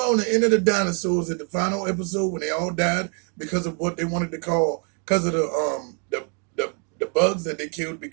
the end of the dinosaurs at the final episode when they all died because of what they wanted to call, because of the bugs that they killed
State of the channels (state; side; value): quieter; left; 38.8 dB